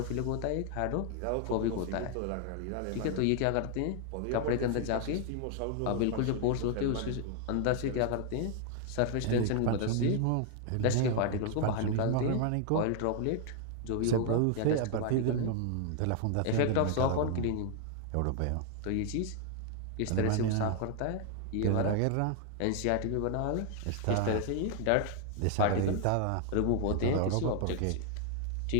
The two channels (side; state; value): both; different; correlation 0.00